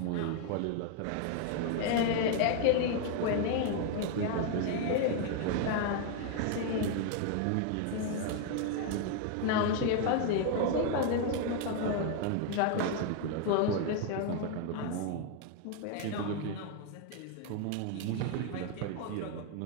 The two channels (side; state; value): both; different; correlation 0.00